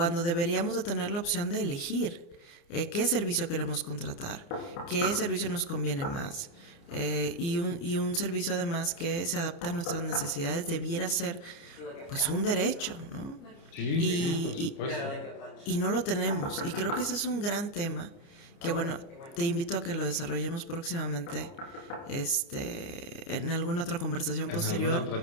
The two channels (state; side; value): late; right; 30 ms